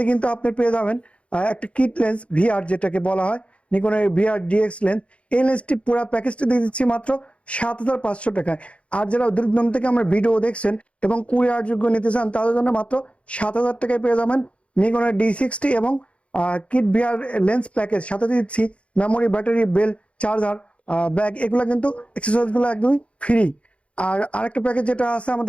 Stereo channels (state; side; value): late; right; 0.061 ms